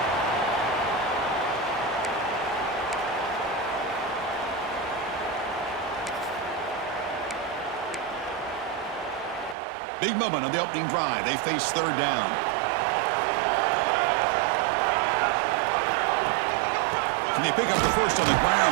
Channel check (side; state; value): left; drops out; at 9.6 s